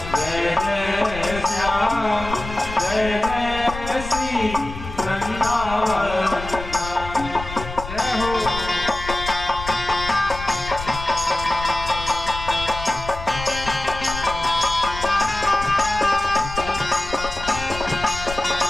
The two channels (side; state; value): left; noise; rumble, 10 dB below the sound